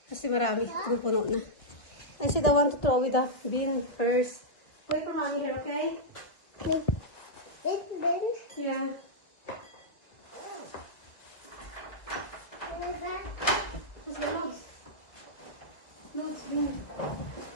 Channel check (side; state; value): right; late; 1.4 ms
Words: Kasi marami, puno na. I said I want to throw with the bin first. Wait for mommy here, okay? Yeah. What's the notes? Notes, bin.